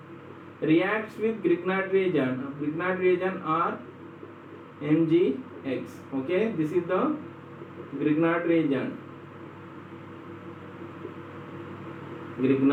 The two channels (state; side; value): identical; both; correlation 1.00